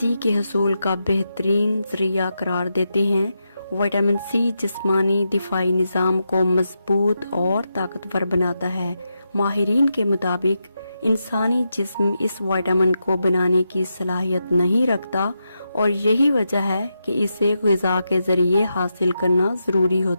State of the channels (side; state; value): both; inverted; correlation -0.86